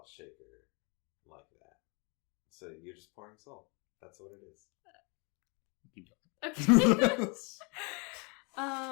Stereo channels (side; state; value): right; quieter; 32.6 dB